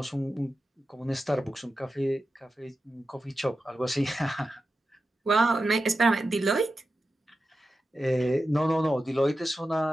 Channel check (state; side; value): normal; both; correlation 0.91